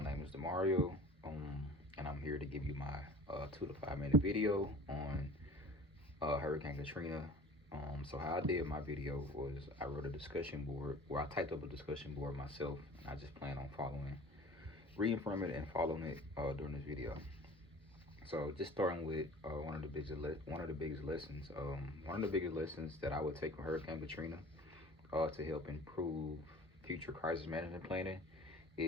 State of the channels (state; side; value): normal; both; correlation 0.44